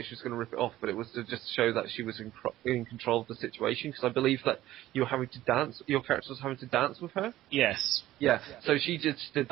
she was going to rip it off, but it was to just show that she was in control of the situation. Because I believe that you were having to dance. Your character was having to dance with her. Yes. Yeah. So she just did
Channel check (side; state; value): left; quieter; 14.9 dB